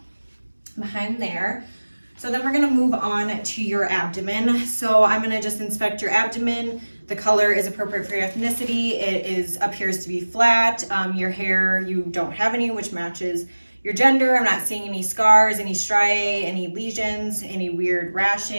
behind there. So then we're gonna move on to your abdomen. So I'm gonna just inspect your abdomen. The color is appropriate for your ethnicity. It appears to be flat. Your hair, you don't have any, which matches your gender. I'm not seeing any scars, any striae, any lesions, any weird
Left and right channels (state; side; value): inverted; both; correlation -1.00